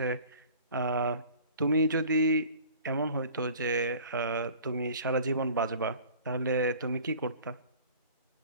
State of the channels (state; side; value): inverted; both; correlation -0.47